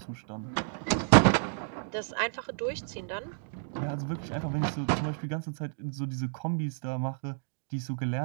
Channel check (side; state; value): left; silent; digital silence